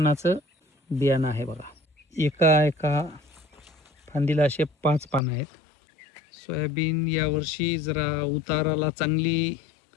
बियाणं आहे बघा. एका फांदीला असे 5 पानं आहेत. सोयाबीन यावर्षी जरा उताराला चांगली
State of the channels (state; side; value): drops out; right; at 5.2 s